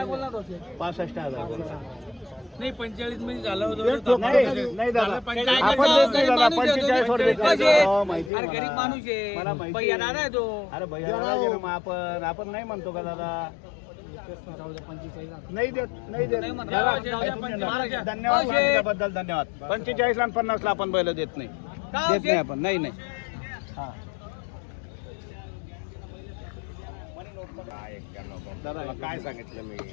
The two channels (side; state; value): right; drops out; at 8.3 s